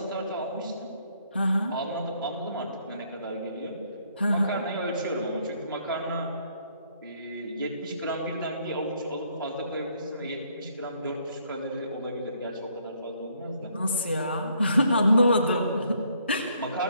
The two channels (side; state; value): both; inverted; correlation -0.68